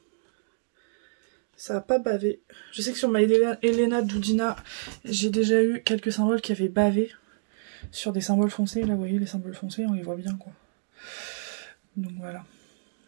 Ça n'a pas bavé. Je sais que sur ma Elena Dudina, j'ai déjà eu quelques symboles qui avaient bavé sur des symboles foncés. Là, vous voyez, les symboles foncés, on les voit bien, quoi. Donc voilà.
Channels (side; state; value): left; silent; digital silence